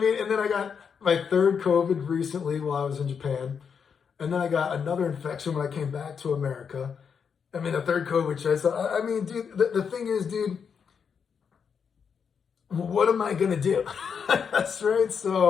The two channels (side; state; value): right; quieter; 6.6 dB